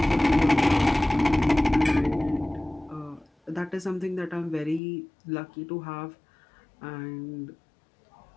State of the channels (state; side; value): drops out; right; at 4.8 s